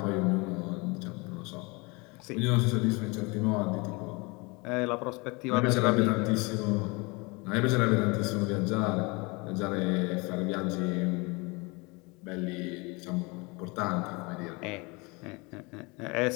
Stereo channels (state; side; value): quieter; right; 27.5 dB